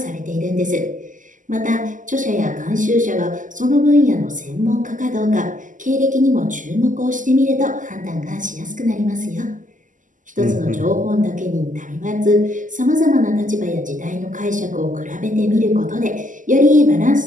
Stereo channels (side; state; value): left; late; 0.37 ms